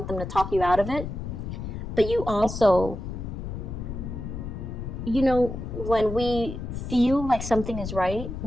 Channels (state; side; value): noise; left; rumble, 6 dB below the sound